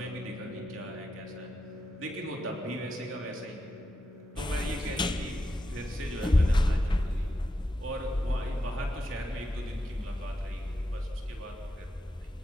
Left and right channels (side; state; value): both; normal; correlation 0.87